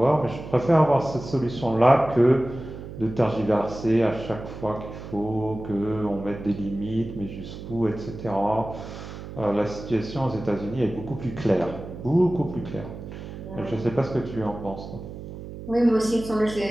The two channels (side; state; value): right; noise; hum, 11 dB below the sound